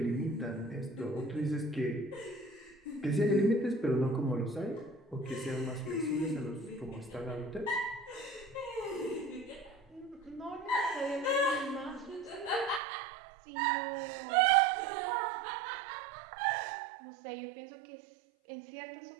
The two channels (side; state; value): left; drops out; at 12.8 s